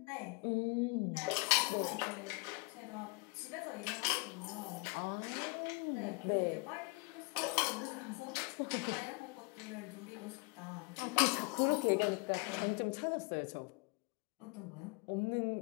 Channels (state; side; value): quieter; right; 28.8 dB